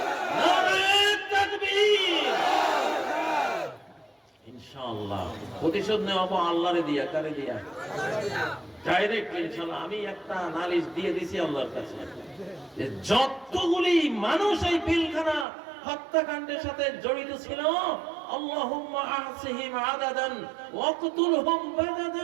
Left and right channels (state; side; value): drops out; left; at 15.5 s